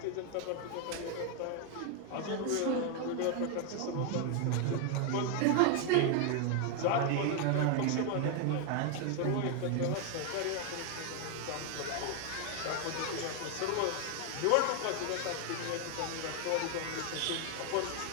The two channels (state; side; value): different; both; correlation 0.00